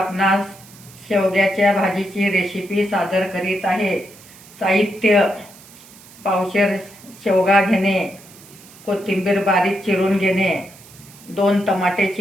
शेवग्याच्या भाजीची रेसिपी सादर करीत आहे. साहित्य: पावशेर शेवगा घेणे, कोथिंबीर बारीक चिरून घेणे, 2 टमाटे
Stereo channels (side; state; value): right; noise; hiss, 22 dB below the sound